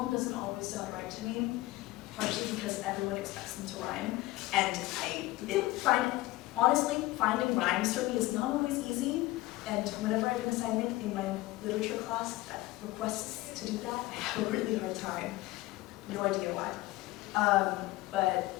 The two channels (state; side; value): quieter; right; 18.7 dB